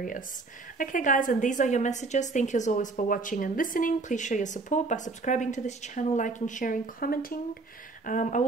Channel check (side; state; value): left; quieter; 3.7 dB